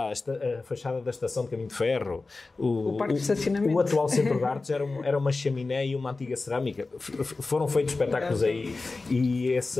a fachada da Estação de Caminho de Ferro, o Parque de Estacionamento. O atual Centro de Artes era uma chaminé e uma antiga cerâmica. Foram feitos espetáculos aí, e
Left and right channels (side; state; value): right; quieter; 3.6 dB